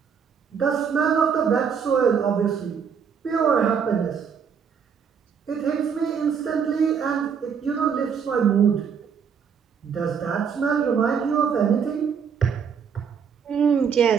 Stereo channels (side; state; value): left; quieter; 6.8 dB